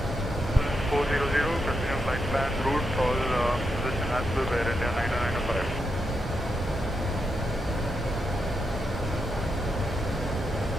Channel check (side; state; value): both; normal; correlation 0.84